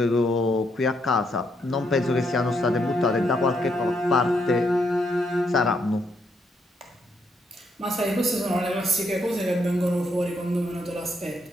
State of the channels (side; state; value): both; normal; correlation 0.76